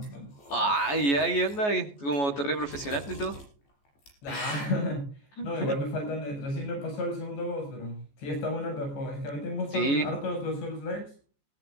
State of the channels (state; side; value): late; right; 14 ms